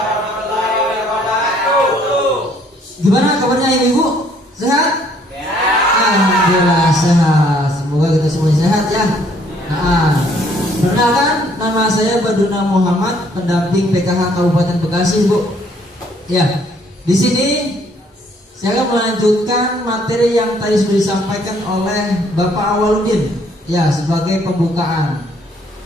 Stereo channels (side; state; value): both; normal; correlation 0.64